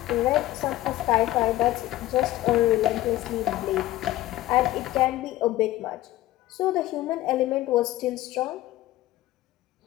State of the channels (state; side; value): quieter; right; 15.6 dB